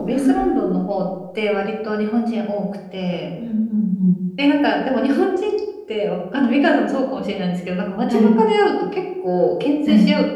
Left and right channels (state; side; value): identical; both; correlation 1.00